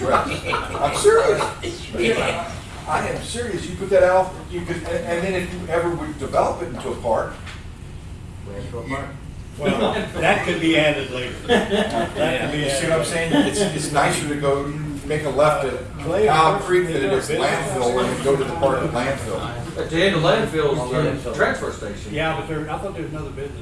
I'm serious. I am serious. You put that out, you could, and then if you ever would develop it into a park. Well, that could be added later. You see what I'm saying? It's nicer to go make a left at Owl Creek than it is landfill and then go to the part of landfill. At the end of landfill's the transfer station. Yeah, but I thought there was another business.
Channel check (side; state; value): both; identical; correlation 1.00